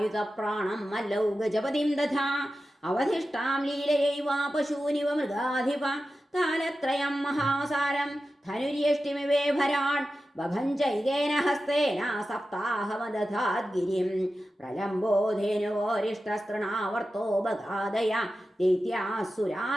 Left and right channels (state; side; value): normal; both; correlation 0.93